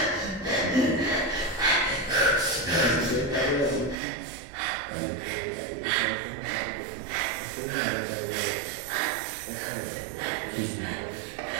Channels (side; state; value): left; drops out; at 4.0 s